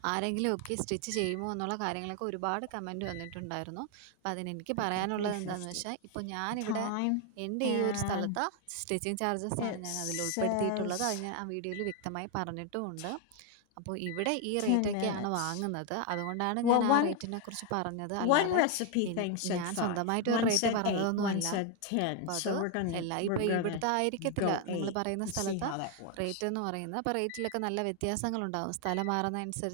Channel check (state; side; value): different; both; correlation 0.01